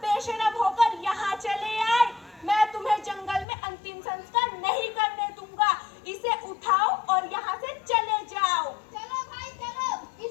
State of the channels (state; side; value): drops out; right; at 3.5 s